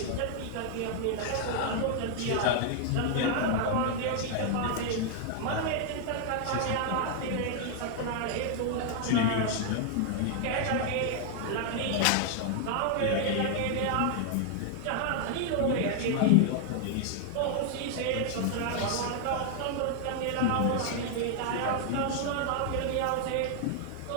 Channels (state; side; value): different; both; correlation 0.00